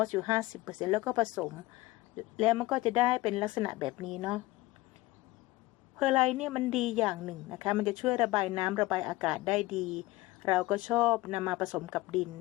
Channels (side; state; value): right; quieter; 19.6 dB